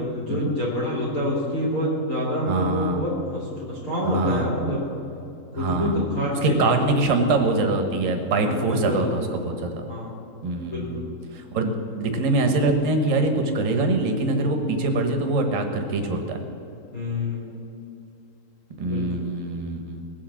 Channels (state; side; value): late; right; 3.8 ms